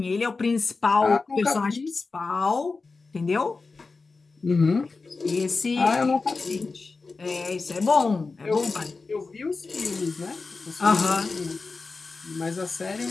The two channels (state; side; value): quieter; right; 4.1 dB